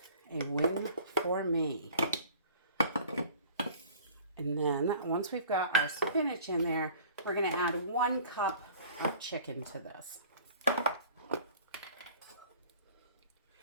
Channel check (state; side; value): inverted; both; correlation -0.47